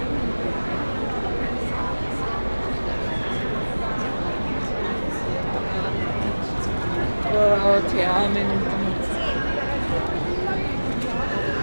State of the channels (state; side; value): inverted; both; correlation -1.00